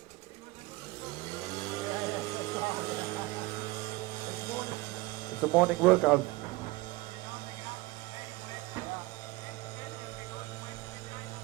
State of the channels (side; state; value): left; quieter; 21.2 dB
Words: It's a morning workout.